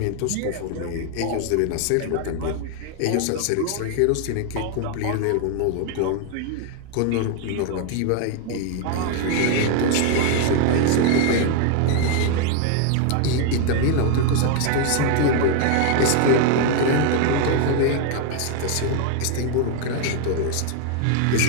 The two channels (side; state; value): both; different; correlation 0.01